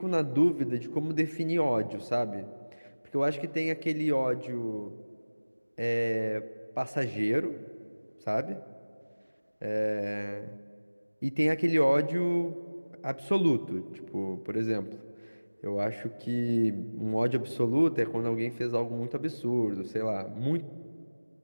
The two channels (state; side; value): inverted; both; correlation -1.00